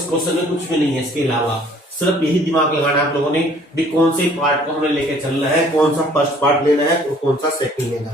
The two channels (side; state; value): both; normal; correlation 0.56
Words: क्वेश्चन में कुछ भी नहीं है इसके अलावा, सिर्फ यही दिमाग लगाना आप लोगों ने भी कौन से पार्ट को हमें लेके चलना है, कौन सा फर्स्ट पार्ट लेना है और कौन सा सेकंड लेना